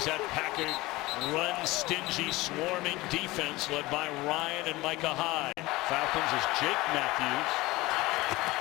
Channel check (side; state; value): right; quieter; 20.2 dB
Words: that Packer run-stingy, swarming defense led by Ryan and Micah Hyde. Falcons is Jake Matthews.